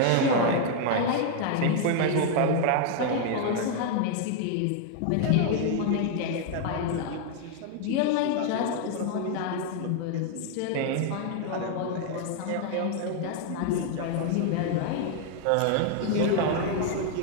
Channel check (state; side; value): different; both; correlation 0.00